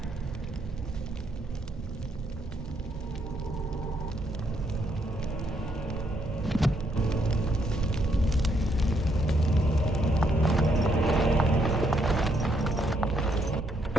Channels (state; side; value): normal; both; correlation 0.74